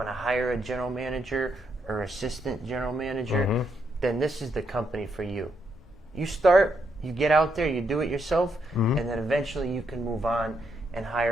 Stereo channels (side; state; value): both; normal; correlation 0.78